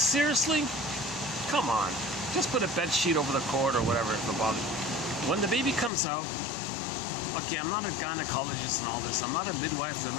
Come on. Just put a bed sheet over the cord or whatever if it bothers you. When the baby comes out, okay, I'm not a gynecologist and all this. I'm not a midwife. I'm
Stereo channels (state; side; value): drops out; right; at 5.9 s